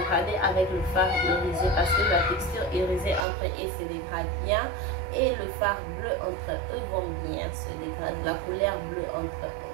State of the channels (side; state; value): left; drops out; at 3.2 s